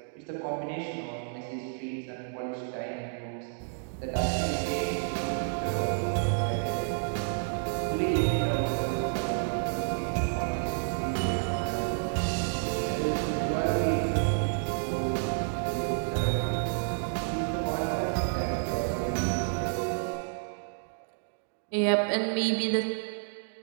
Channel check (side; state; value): left; silent; digital silence